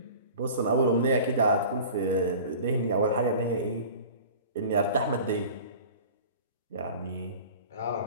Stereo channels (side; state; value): both; inverted; correlation -0.41